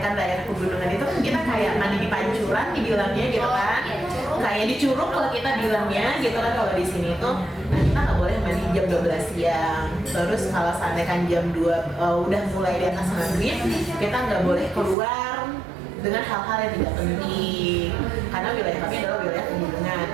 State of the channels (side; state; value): left; drops out; at 15.0 s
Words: daerah pegunungan itu kan kita kayak mandi di pancuran dibilangnya gitu kan, kayak di curug kalau kita bilangnya gitu kan. Kalau di sini itu nah kita nggak boleh mandi jam 12 siang. Terus kalau seandainya jam 2 udah mulai di atas maghrib, kita nggak boleh keluar dengan hal-hal yang tidak penting karena wilayah kami adalah wilayah pegunungan